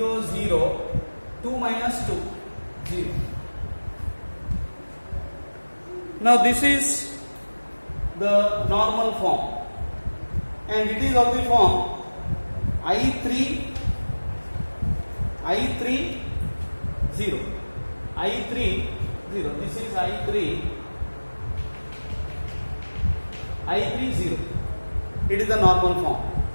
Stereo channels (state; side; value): inverted; both; correlation -1.00